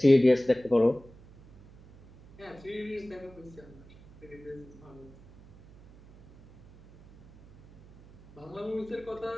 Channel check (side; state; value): right; noise; hum, 23 dB below the sound